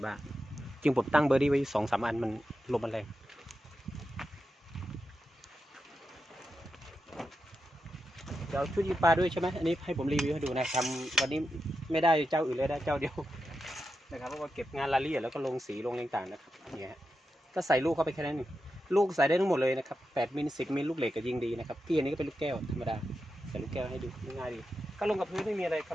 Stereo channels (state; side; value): normal; both; correlation 0.88